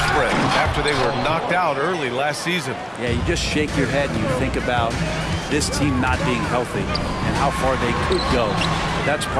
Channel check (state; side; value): identical; both; correlation 1.00